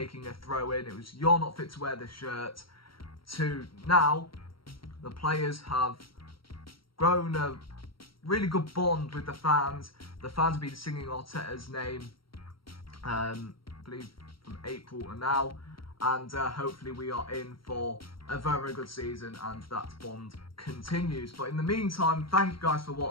a throw in. It was you're not fit to wear the shirt, to now the players have grown a really good bond with the fans. The fans have been singing Arteta's name, I believe from April to now, and hopefully we are in for a very, very good season and that bond continues. But in the meantime, thank you guys for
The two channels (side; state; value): right; late; 0.74 ms